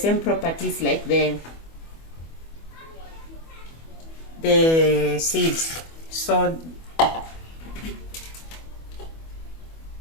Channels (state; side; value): late; right; 25 ms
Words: properties like the seeds. So